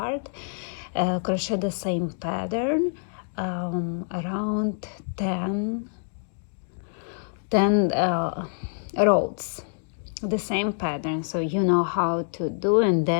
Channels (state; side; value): silent; right; digital silence